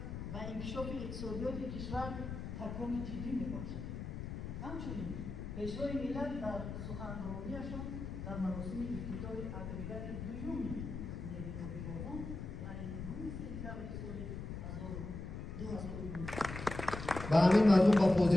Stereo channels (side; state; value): left; noise; rumble, 7 dB below the sound